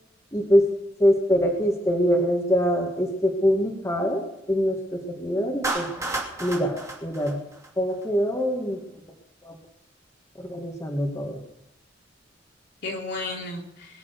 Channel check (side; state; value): both; normal; correlation 0.76